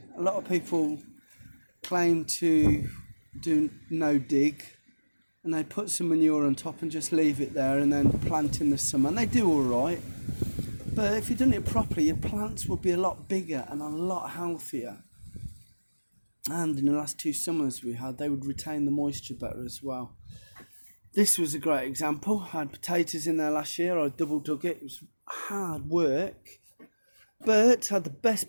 A lot of people claim to do no dig, and they put some manure on top and just leave it there and then plant in the summer, and they do all right. But if you'd done it properly, your plants would be a lot bigger and a lot healthier. And in the last 2 summers we had, they would retain the moisture better as well. This was a great example. I had potatoes in there last year. I double dug it. It was hard work, but had the best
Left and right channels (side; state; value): both; inverted; correlation -1.00